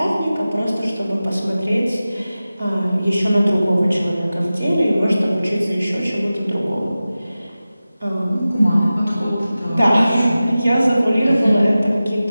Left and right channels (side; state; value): both; inverted; correlation -0.95